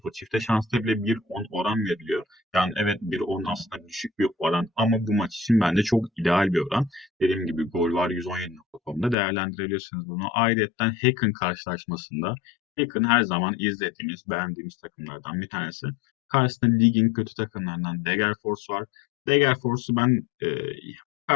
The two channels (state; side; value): drops out; right; at 9.2 s